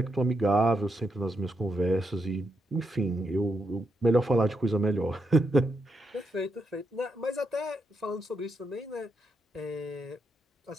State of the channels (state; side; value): normal; both; correlation 0.82